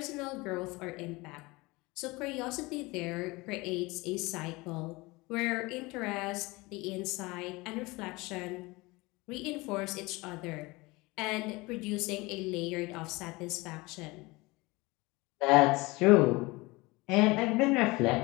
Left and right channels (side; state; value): right; quieter; 23.2 dB